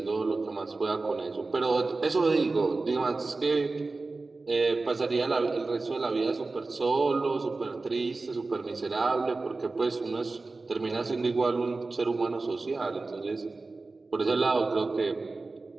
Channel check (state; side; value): quieter; left; 3.6 dB